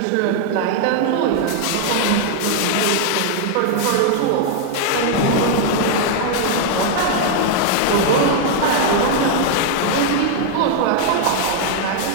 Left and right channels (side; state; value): both; different; correlation 0.00